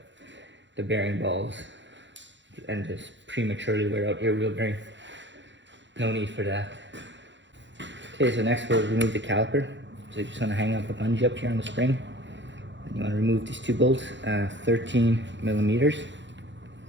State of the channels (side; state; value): left; late; 0.53 ms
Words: bearing balls and just prematurely wear out your wheel bearing. No need for that. Okay, so next we'll remove the caliper. So you just want to hang up a bungee up here on the spring. And you want to remove these two bolts, 13mm.